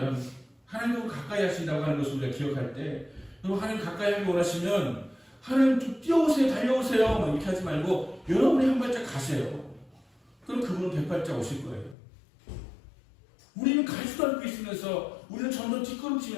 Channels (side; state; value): right; drops out; at 12.0 s